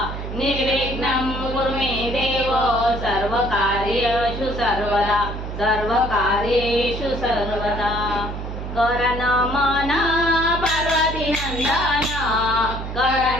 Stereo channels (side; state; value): right; noise; hum, 7 dB below the sound